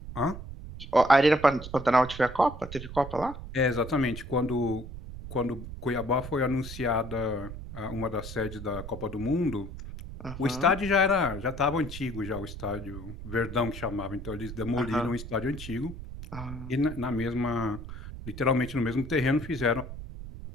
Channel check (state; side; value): noise; right; rumble, 11 dB below the sound